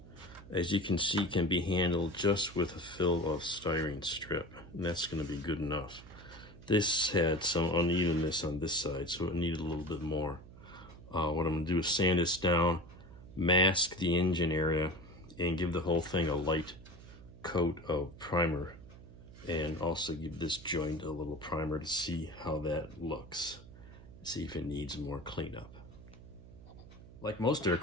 as you can see, can be handled just with a fill of styrene strip, and that's going to be good enough. This had some unevenness on this side, so it needed a little bit more. What I'm going to do is sand this down, mask the engine area, and give the whole thing a light coat of primer and also give this joint a little primer to see how that looks. See if it needs more cleanup. Like most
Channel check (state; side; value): noise; right; hum, 18 dB below the sound